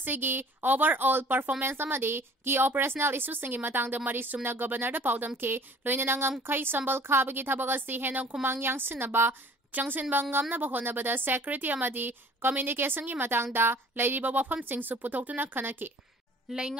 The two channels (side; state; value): both; normal; correlation 0.49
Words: overall performance amadi ki operational issues sing matangda mari sumna governor da paudam ke loinana ngamkai sambal khabagi thabagasi hena kumang yang sinaba Changsin Bangamna Bahonabada Secretary Amadi Communication gi matangda lairiba wafam singsu putoktuna khanaki